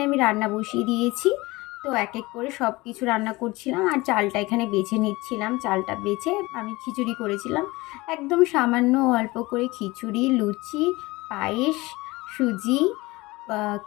আমি রান্না বসিয়ে দিয়েছি। তো এক এক করে সব কিছু রান্না করছিলাম, আর চালটা এখানে বেছে নিচ্ছিলাম। চালটা বেছে আমি খিচুড়ি করেছিলাম, একদম সামান্য অল্প করে খিচুড়ি, লুচি, পায়েস, সুজি,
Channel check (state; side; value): quieter; right; 21.5 dB